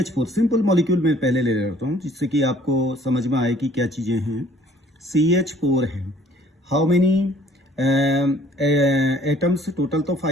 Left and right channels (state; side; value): normal; both; correlation 0.57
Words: simple molecule में पहले ले लेता हूँ जिससे कि आपको समझ में आए कि क्या चीज़ें हैं। CH4 है, हाउ मेनी एटम्स, टोटल तो